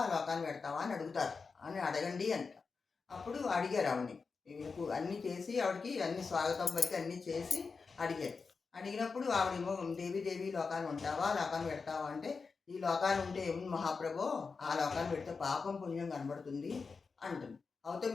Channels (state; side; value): quieter; right; 4.8 dB